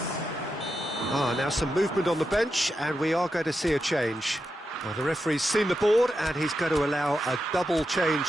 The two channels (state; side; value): normal; both; correlation 0.87